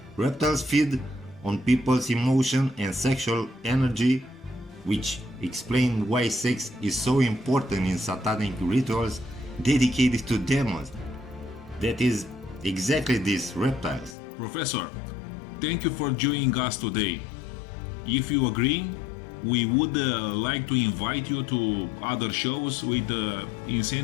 Reptiles feed on people's emotion and sexual energy, which explain why sex is so important in satanic rituals dedicated to demons. That is exactly these reptiles. Professor, thank you for joining us today. If you agree, we would like to invite you to other shows with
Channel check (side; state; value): right; drops out; at 14.2 s